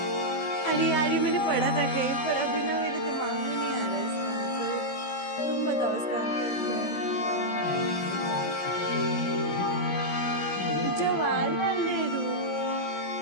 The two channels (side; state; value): right; late; 16 ms